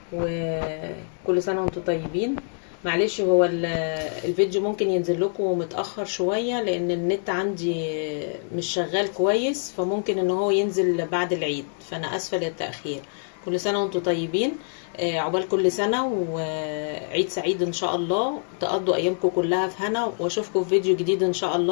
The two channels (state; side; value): silent; right; digital silence